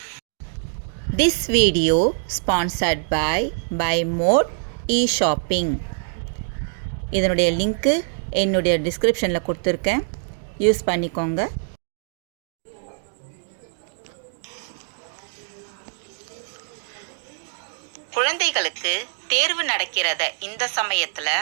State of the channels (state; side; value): silent; left; digital silence